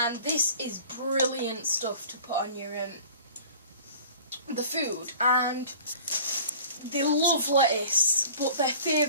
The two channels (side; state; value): both; inverted; correlation -0.46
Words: and this is brilliant stuff to put on your the food. And they love lettuce, but their